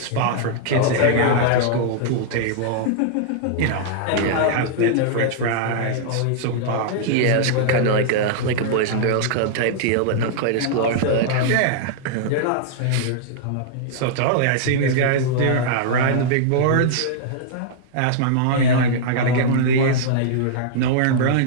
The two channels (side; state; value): both; different; correlation -0.01